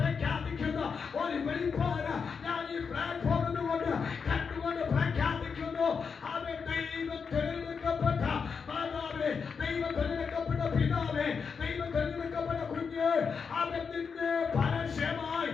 ഒരു വെളിപ്പാട് ഞാൻ ഈ പ്ലാറ്റ്ഫോമിൽ കൊണ്ട് കണ്ടുകൊണ്ട് പ്രഖ്യാപിക്കുന്നു. അവൻ ദൈവം തിരഞ്ഞെടുക്കപ്പെട്ട മാതാവേ, ദൈവം തിരഞ്ഞെടുക്കപ്പെട്ട പിതാവേ, ദൈവം തിരഞ്ഞെടുക്കപ്പെട്ട കുഞ്ഞ്, അവൻ നിന്നെ പരസ്യമായി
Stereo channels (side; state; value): right; quieter; 5.8 dB